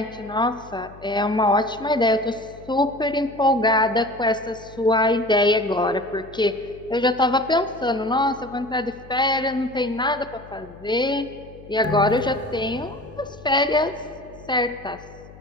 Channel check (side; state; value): left; noise; hum, 20 dB below the sound